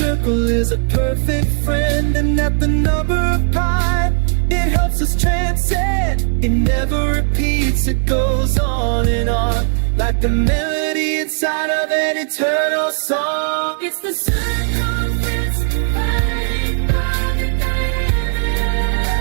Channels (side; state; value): left; silent; 65 dB below the other